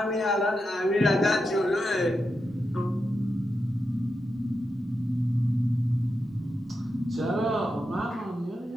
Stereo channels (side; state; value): both; normal; correlation 0.87